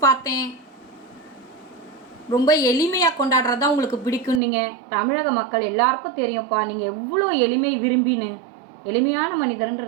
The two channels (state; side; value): drops out; left; at 4.4 s